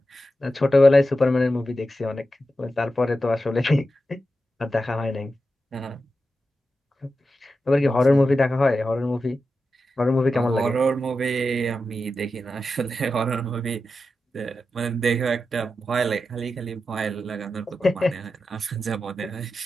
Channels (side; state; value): both; normal; correlation 0.90